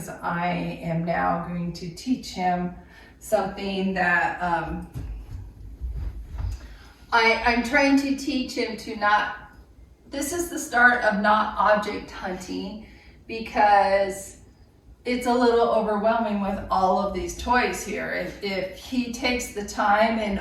I am now going to teach him something that I'm trying to teach him to not, this is the start of not object hunting, because it's a little overwhelming with all of these toys here. If he takes the time and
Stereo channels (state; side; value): identical; both; correlation 1.00